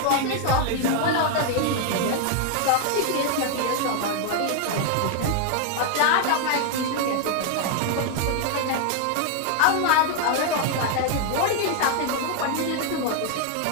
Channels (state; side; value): different; both; correlation 0.00